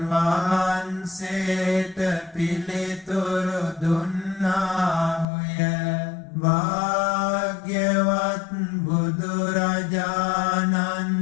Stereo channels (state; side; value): drops out; right; at 5.2 s